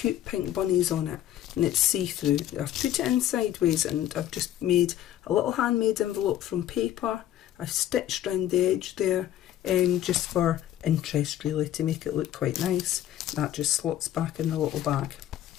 pink bunnies on it, and it's see-through. I've put it in sideways, and I've just made a little handmade envelope from paper. I've stitched around the edge there, just for interest really, to make it look quite nice. That just slots back in the little bag.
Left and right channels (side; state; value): right; quieter; 12.2 dB